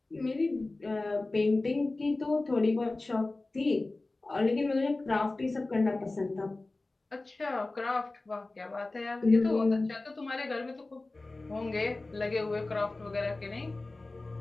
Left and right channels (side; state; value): right; quieter; 3.1 dB